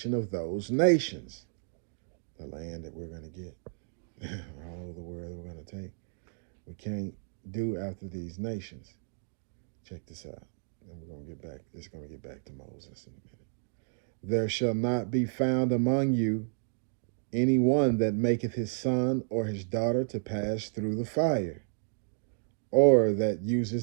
of those nations. The land that we're going to get, all over the world that we're going to take. We can't do after these nations. Check this out. And we're going to get back. It's going to get back to Moses in a minute. There shall not be found among you any one that maketh his son or his daughter to pass through the fire, or that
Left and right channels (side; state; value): left; silent; digital silence